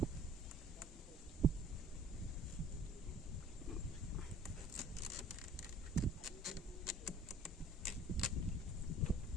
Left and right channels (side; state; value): both; normal; correlation 0.51